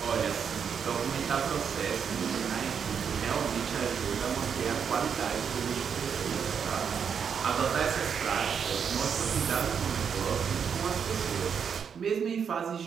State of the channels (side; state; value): left; quieter; 7.1 dB